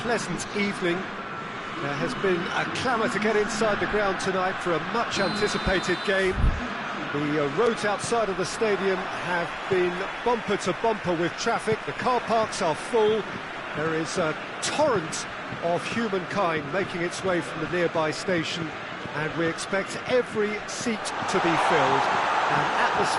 pleasant evening. There has been a clamour to get inside the ground tonight for a much anticipated game. The roads outside of the stadium have been bumper to bumper with traffic. The car parks are full. There is a torrent of humankind making its way from the nearby station, and we expect every seat to be filled. An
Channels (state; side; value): identical; both; correlation 1.00